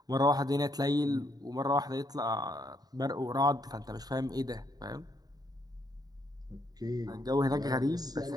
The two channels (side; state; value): left; late; 0.19 ms